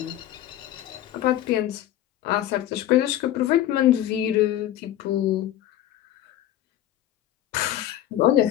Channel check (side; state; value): right; quieter; 12.8 dB